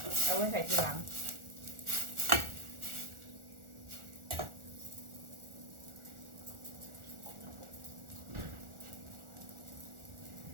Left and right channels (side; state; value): left; late; 1.4 ms